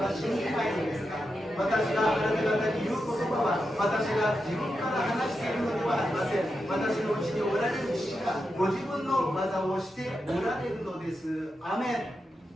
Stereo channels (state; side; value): normal; both; correlation 0.88